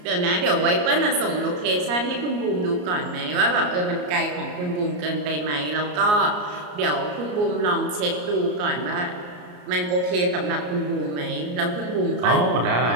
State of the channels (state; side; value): late; left; 34 ms